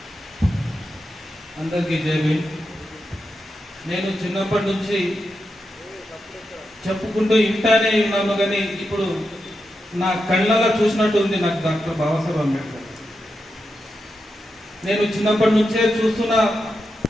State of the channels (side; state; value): both; normal; correlation 0.87